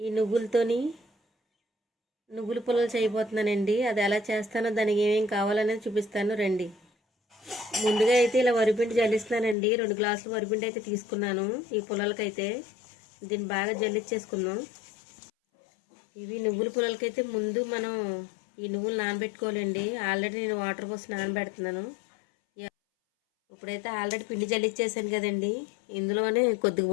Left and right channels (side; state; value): right; drops out; at 9.6 s